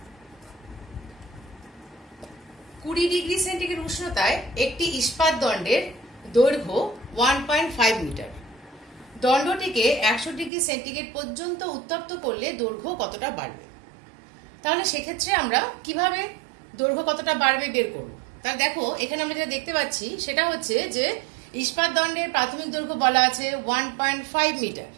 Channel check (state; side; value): drops out; left; at 10.5 s